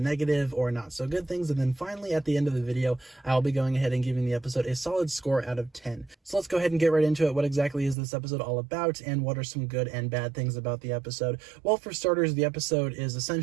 or not so good things, and then finally, at the end of the video, I'll be going ahead and giving the episode a solid score out of 10. So let's go ahead and get right into it. What exactly is this episode all about, and what are some good and bad things about the episode? Well, for starters, the episode is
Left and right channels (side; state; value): left; drops out; at 8.0 s